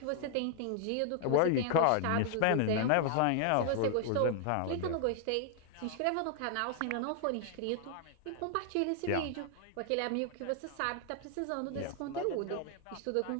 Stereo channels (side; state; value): both; different; correlation 0.00